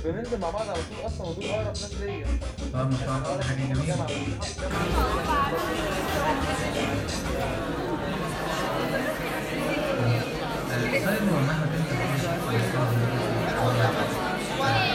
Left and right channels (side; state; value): both; identical; correlation 1.00